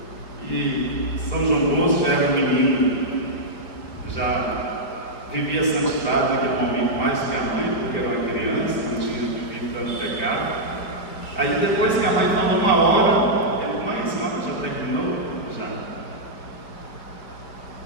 E São João Bosco já era um menino, já vivia a santidade naquele momento mais que a mãe, porque era uma criança, não tinha vivido tanto pecado. Aí depois que a mãe falou uma hora, ele: mãe, a senhora já terminou? Já.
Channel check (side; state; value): right; late; 4.8 ms